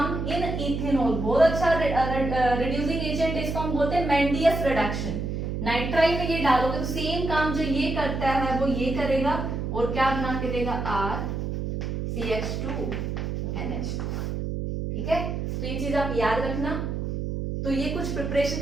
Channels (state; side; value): noise; right; hum, 3 dB below the sound